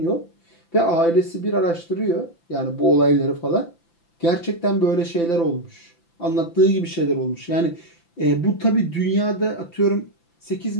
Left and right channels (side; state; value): right; late; 5.9 ms